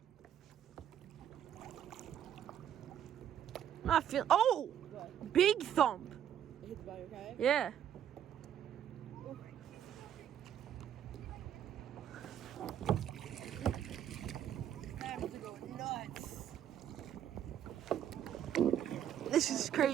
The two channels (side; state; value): left; quieter; 9.9 dB